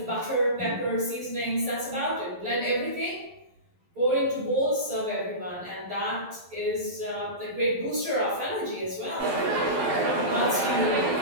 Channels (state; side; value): late; left; 11 ms